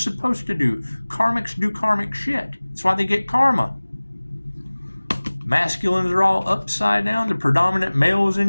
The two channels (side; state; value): both; inverted; correlation -1.00